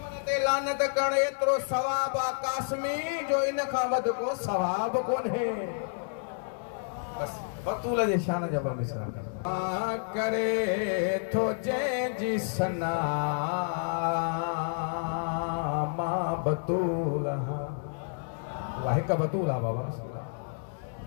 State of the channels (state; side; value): silent; right; 58 dB below the other